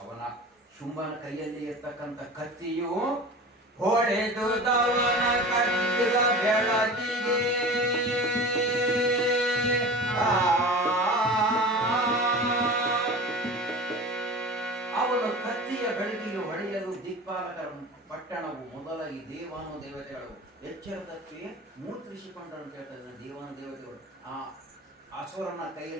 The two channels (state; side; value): normal; both; correlation 0.35